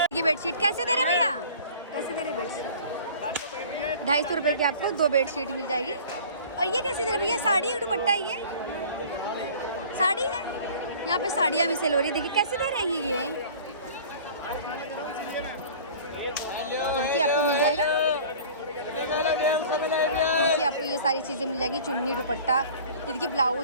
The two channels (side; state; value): both; inverted; correlation -0.45